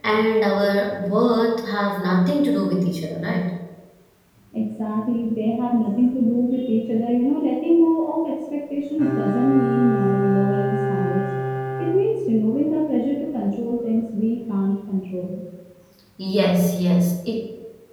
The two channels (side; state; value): both; identical; correlation 1.00